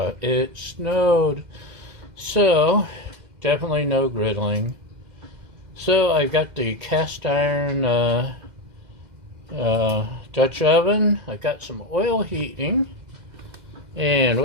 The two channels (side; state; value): left; late; 2.0 ms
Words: it snowed. So, definitely no griddling. So, I've got the cast iron Dutch oven. I've got some oil heating. And